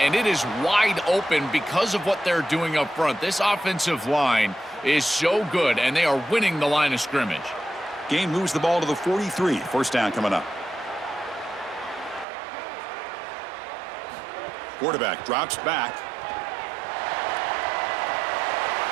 it is wide open because of what they're doing up front. This offensive line is so good, and they are winning the line of scrimmage. Game moves the ball to the 43. First down coming up. Quarterback drops back.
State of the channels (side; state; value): left; drops out; at 12.2 s